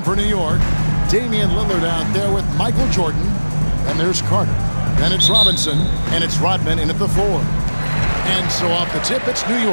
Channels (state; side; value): inverted; both; correlation -1.00